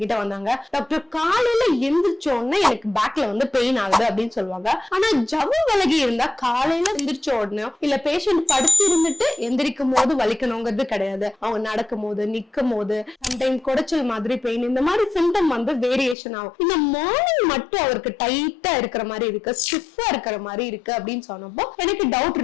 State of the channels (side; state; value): right; drops out; at 16.2 s